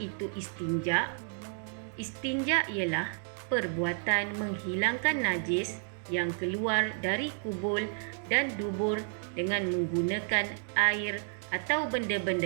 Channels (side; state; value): left; silent; 57 dB below the other